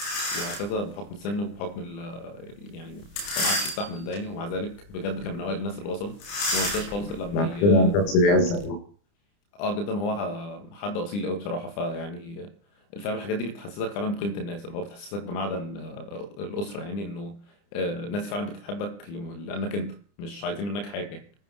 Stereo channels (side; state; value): right; late; 30 ms